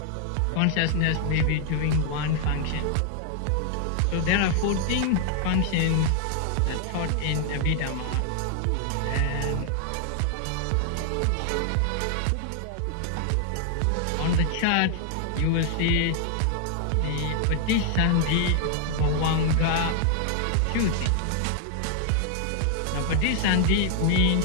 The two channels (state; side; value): different; both; correlation 0.00